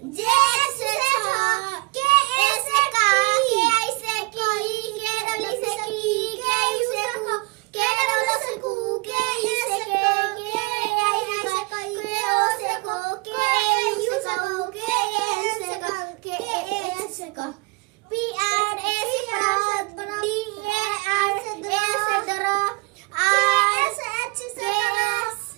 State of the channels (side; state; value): left; quieter; 27.3 dB